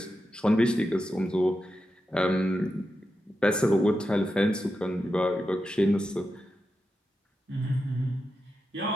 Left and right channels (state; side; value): normal; both; correlation 0.89